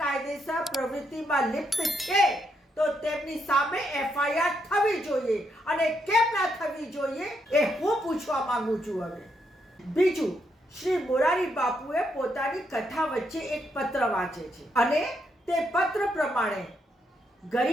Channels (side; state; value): both; normal; correlation 0.78